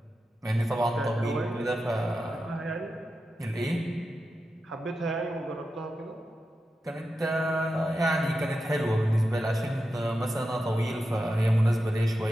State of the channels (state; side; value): normal; both; correlation 0.90